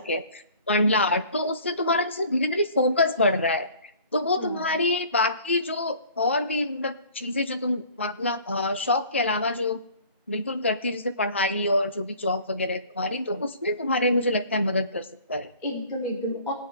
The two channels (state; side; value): inverted; both; correlation -0.49